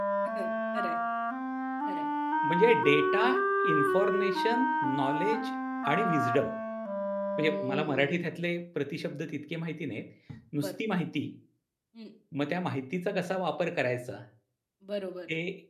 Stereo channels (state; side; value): identical; both; correlation 1.00